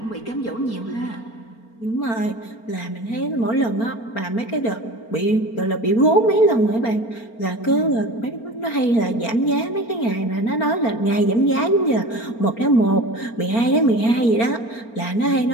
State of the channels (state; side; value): late; right; 4.4 ms